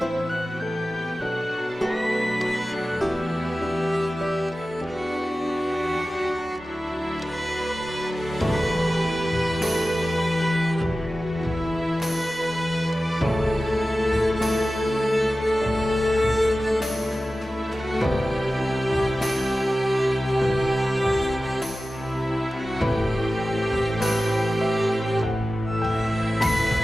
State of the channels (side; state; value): both; normal; correlation 0.95